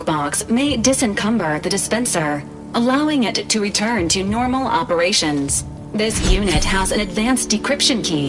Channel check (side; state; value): both; identical; correlation 1.00